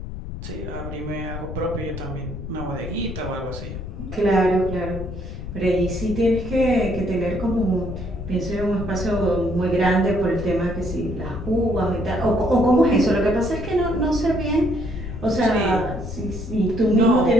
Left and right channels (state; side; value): noise; left; rumble, 8 dB below the sound